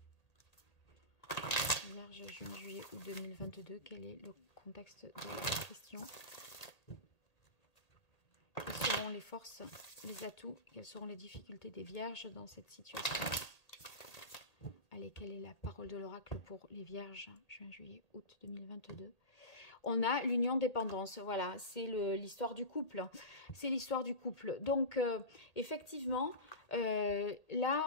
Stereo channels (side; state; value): right; late; 1.8 ms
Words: Vierge, juin, juillet, août 2022, quel est le contexte de la question? Quelles seront les forces, les atouts, quelles seront les difficultés des Vierges dans cette situation? Aïe, Allez, quelle est la parole de l'oracle pour les vierges, juin, juillet, août 2022? On a l'union dépendance, voilà, c'est l'histoire du couple. C'est l'histoire du couple. Donc, effectivement,